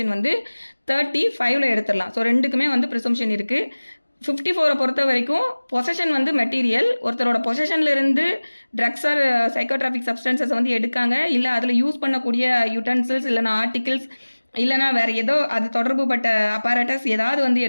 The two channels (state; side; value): inverted; both; correlation -1.00